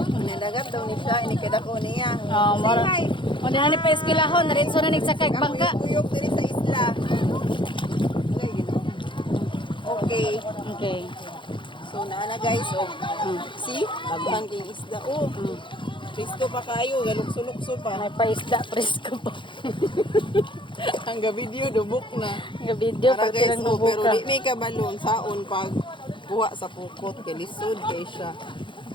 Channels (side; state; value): right; late; 0.24 ms